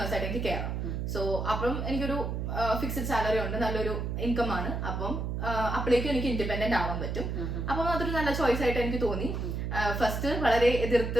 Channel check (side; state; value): right; noise; hum, 2 dB below the sound